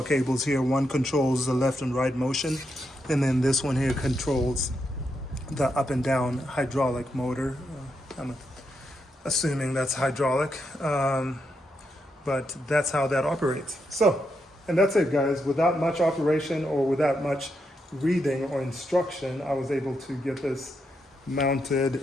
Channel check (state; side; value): normal; both; correlation 0.82